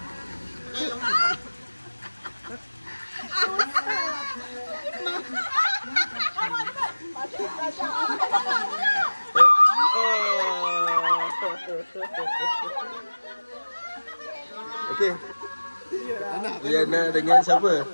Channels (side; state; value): both; inverted; correlation -1.00